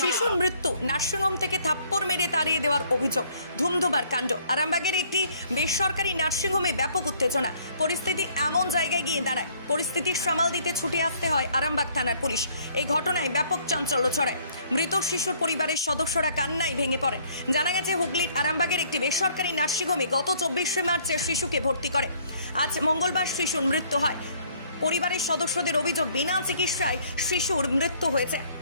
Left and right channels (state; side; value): inverted; both; correlation -0.61